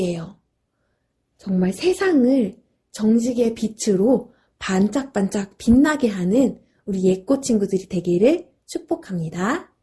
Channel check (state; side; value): identical; both; correlation 1.00